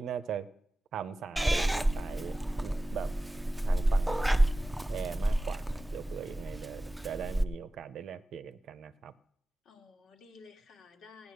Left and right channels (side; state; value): both; normal; correlation 0.96